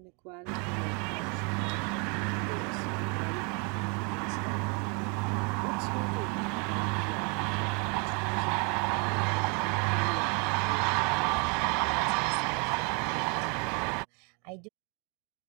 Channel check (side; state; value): left; quieter; 34.1 dB